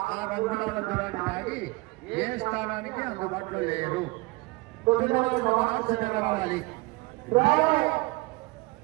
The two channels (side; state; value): left; quieter; 24.0 dB